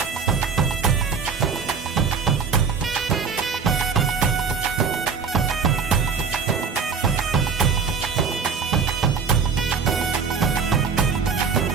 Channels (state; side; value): quieter; left; 5.7 dB